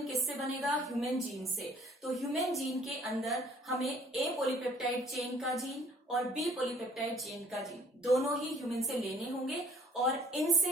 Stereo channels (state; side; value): normal; both; correlation 0.57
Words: किससे बनेगा? ह्यूमन जीन से। तो ह्यूमन जीन के अंदर हमें ए पॉलीपेप्टाइड चेन का जीन और बी पॉलीपेप्टाइड चेन का जीन दोनों ही ह्यूमन से लेने होंगे और